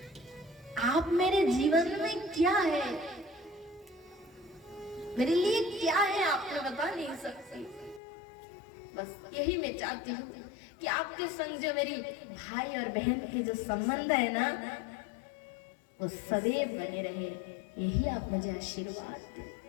आप मेरे जीवन में क्या है, मेरे लिए क्या है, आपने बता नहीं सकती। बस यही मैं चाहती हूँ कि आपके संग जो मेरी भाई और बहन के जो संबंध है ना, वो सदैव बने रहे, यही आप मुझे आशीर्वाद दें।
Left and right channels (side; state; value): right; drops out; at 8.0 s